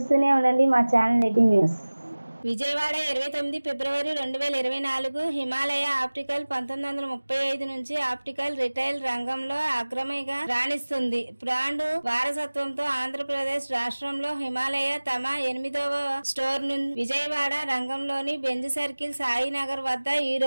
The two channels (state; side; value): inverted; both; correlation -1.00